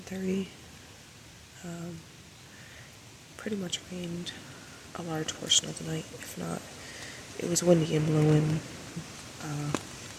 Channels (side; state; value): both; identical; correlation 1.00